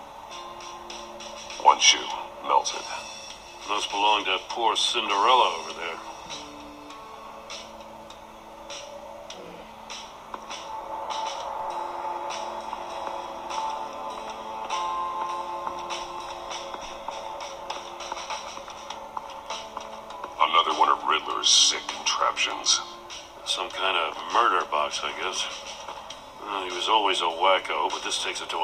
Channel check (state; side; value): identical; both; correlation 1.00